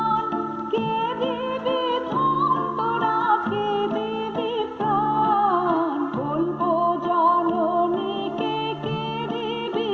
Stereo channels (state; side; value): identical; both; correlation 1.00